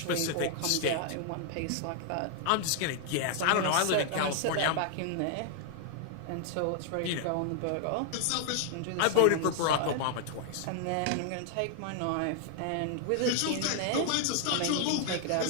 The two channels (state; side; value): different; both; correlation 0.00